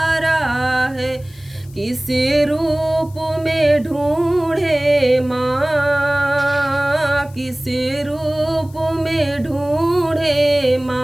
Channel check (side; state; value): left; noise; hiss, 26 dB below the sound